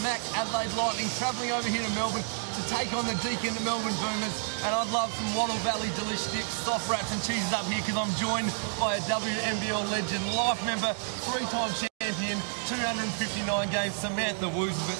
Mac Adelaide Lightning, travelling over here to Melbourne to take on the Deakin Melbourne Boomers, and I'd love some Wattle Valley delicious dips, soft wraps and cheeses up here because I'm joined by a WNBL legend, life member, three-time champion, 259 games, Samantha Woozles.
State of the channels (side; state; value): left; silent; 58 dB below the other